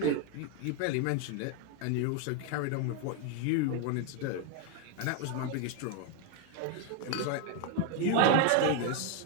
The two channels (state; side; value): different; both; correlation 0.01